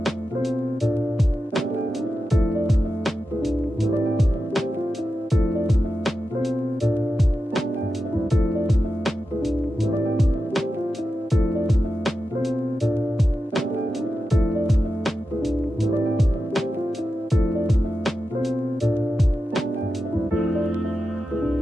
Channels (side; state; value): both; normal; correlation 0.91